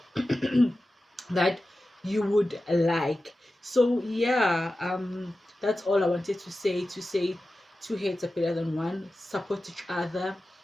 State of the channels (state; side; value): normal; both; correlation 0.94